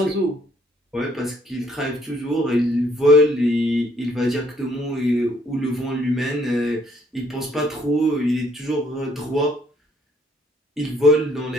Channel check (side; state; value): both; normal; correlation 0.65